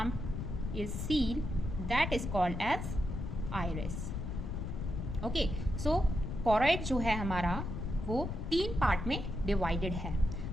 is seen that is called as iris. Okay, so choroid जो है हमारा वो 3 part में divided है.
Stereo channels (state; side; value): noise; left; rumble, 4 dB below the sound